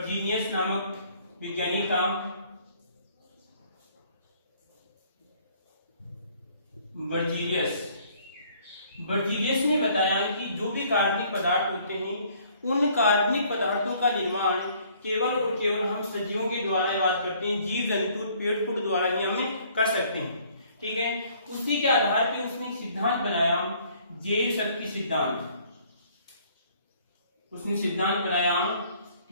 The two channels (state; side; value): inverted; both; correlation -0.60